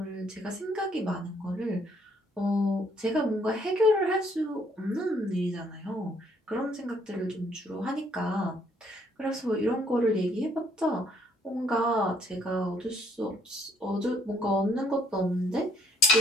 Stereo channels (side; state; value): both; normal; correlation 0.65